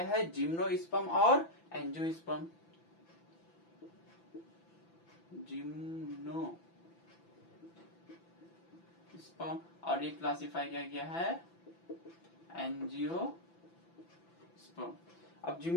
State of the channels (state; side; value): late; right; 5.9 ms